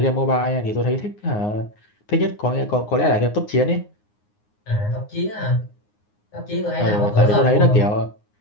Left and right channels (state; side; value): late; right; 9.6 ms